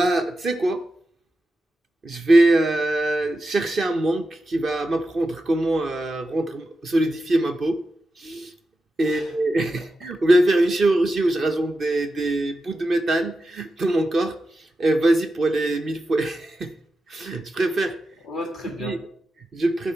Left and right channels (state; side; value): normal; both; correlation 0.90